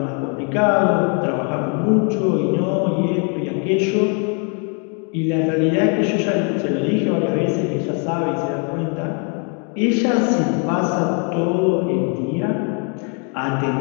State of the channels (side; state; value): right; quieter; 37.8 dB